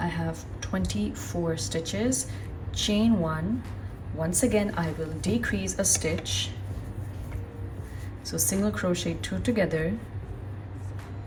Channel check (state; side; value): identical; both; correlation 1.00